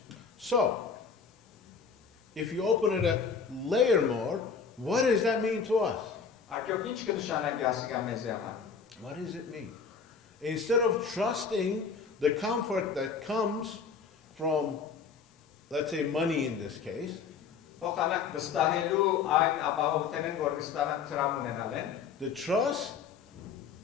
So, if you open it a layer more, what does that mean to us? Արկեոք ինչ կնշանակի ասիկա մեզի համար։ What does it mean? Instead of trusting the comfort that comes from, let's say, money in this case, Փոխանակ վստահելու այն ապահովությունն, որ կստանան տրամ ունենալ են, the trust,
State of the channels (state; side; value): quieter; right; 5.8 dB